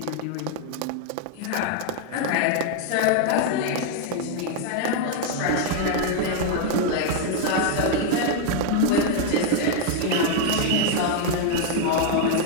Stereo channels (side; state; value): both; different; correlation 0.00